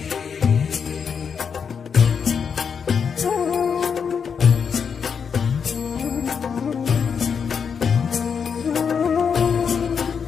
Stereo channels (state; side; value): quieter; right; 6.6 dB